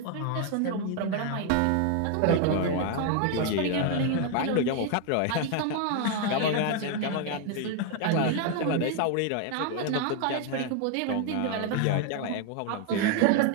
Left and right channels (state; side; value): different; both; correlation 0.01